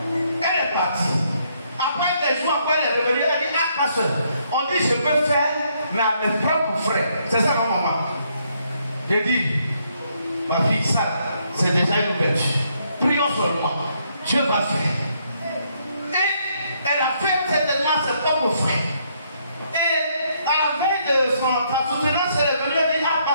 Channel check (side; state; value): both; inverted; correlation -0.72